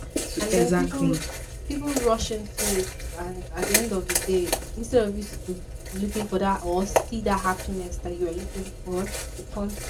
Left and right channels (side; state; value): both; identical; correlation 1.00